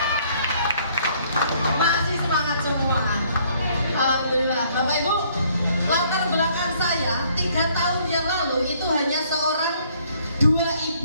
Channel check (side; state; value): both; inverted; correlation -0.64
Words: Masih semangat semua. Alhamdulillah. Bapak Ibu, latar belakang saya 3 tahun yang lalu itu hanya seorang 2